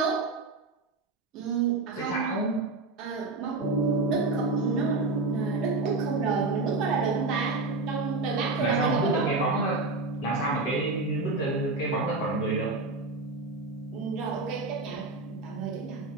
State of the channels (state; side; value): quieter; left; 3.4 dB